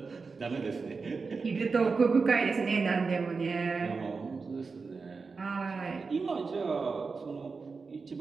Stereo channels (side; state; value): left; quieter; 4.6 dB